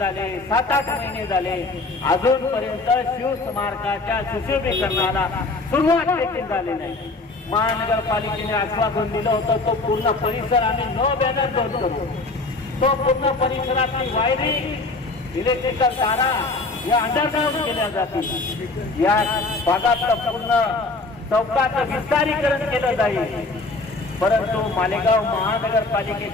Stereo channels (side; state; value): right; quieter; 3.4 dB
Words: 7-8 महिने झाले, अजूनपर्यंत शिवस्मारकाच्या सुशोभीकरणाला सुरुवात देखील झाली नाही. महानगरपालिकेने आश्वासन दिलं होतं तो पूर्ण परिसर आम्ही नो बॅनर बंद करू. तो पूर्ण परिसरातली वायरिंग, इलेक्ट्रिकल तारा या अंडरग्राउंड केल्या जातील. या भागातलं पूर्ण चौकाचं विस्तारीकरण केलं जाईल. परंतु मालेगाव